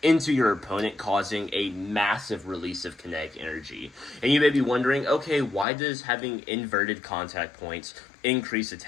into your opponent, causing a massive release of kinetic energy. And you may be wondering, okay, why does having inverted contact points increase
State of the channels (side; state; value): right; drops out; at 5.7 s